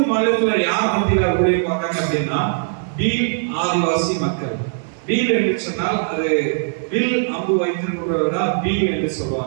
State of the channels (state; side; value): silent; left; digital silence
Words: மாநிலத்துல யார் மத்தியில ஊழியம் பார்க்கறாங்க அப்படின்னா பீல் ஆதிவாசி மக்கள். பீல் என்று சொன்னால் அது வில் அம்பு வைத்திருக்கிறவங்க பீல் என்று